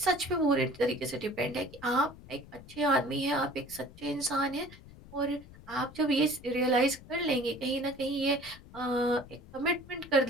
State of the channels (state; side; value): noise; left; rumble, 19 dB below the sound